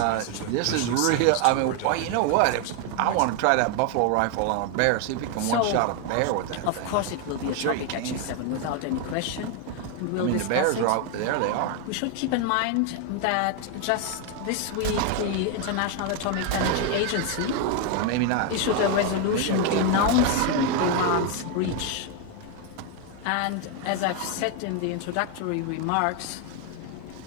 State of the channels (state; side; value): different; both; correlation 0.01